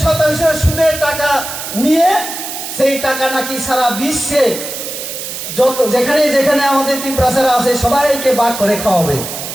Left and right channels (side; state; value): right; noise; hiss, 7 dB below the sound